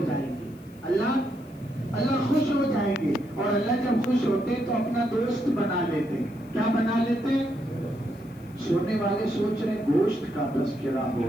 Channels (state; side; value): noise; left; hiss, 29 dB below the sound